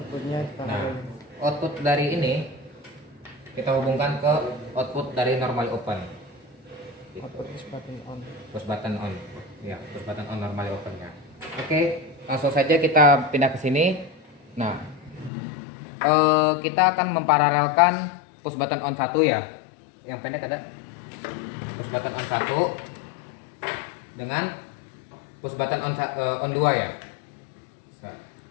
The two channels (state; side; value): drops out; right; at 15.3 s